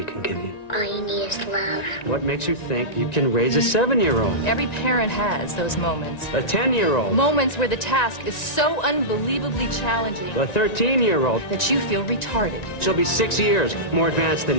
can give you? All you need is love. What makes you think you can raise a 7-year-old? Every parent has those moments. A 10-year-old? Moments where the task is so unbelievably challenging A 13-year-old? that you feel retarded. She'll be 6 years more advanced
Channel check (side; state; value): right; late; 1.9 ms